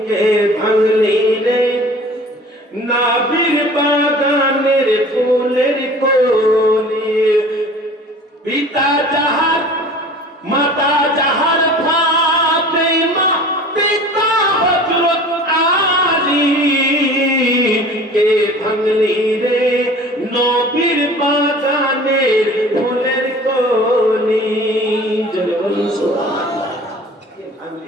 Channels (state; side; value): normal; both; correlation 0.44